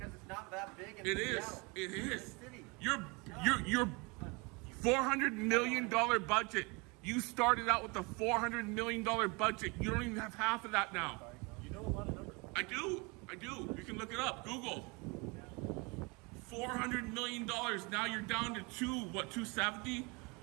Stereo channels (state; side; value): quieter; left; 28.4 dB